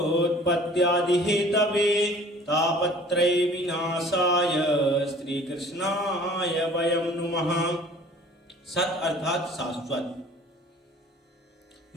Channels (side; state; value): both; normal; correlation 0.50